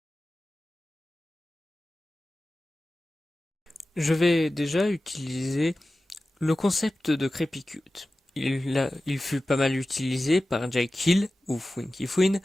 Je vais déjà utiliser le concept de Crepicute. Il fut pas mal utilisé par Jake Hill ou Funky Fwin,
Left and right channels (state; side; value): normal; both; correlation 0.95